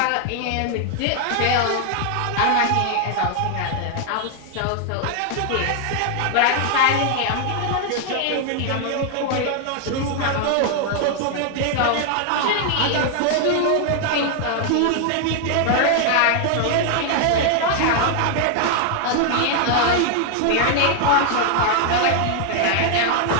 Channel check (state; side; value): different; both; correlation 0.00